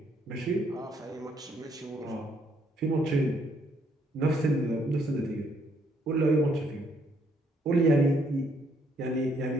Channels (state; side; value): normal; both; correlation 0.70